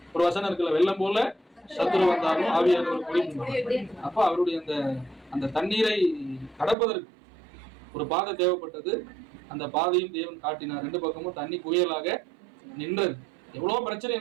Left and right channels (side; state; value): left; drops out; at 6.8 s